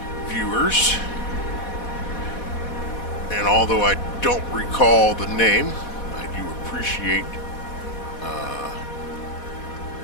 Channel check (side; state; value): right; late; 4.1 ms